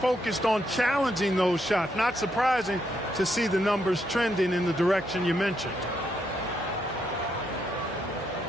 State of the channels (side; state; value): both; normal; correlation 0.78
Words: on challenging those shots. Not surprising to see the numbers trending in the direction you mentioned.